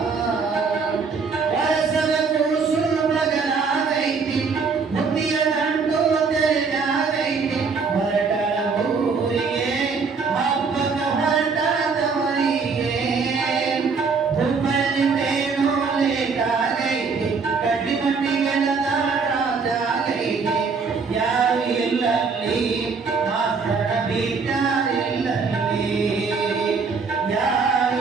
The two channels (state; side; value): quieter; left; 5.0 dB